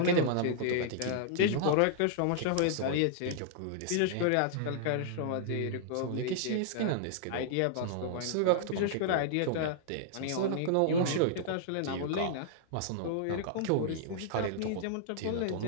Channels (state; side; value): different; both; correlation -0.01